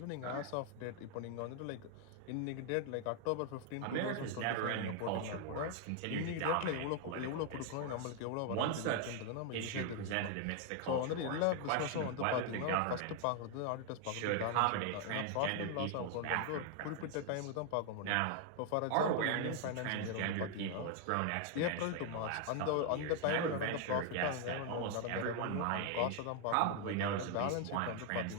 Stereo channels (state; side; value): different; both; correlation 0.00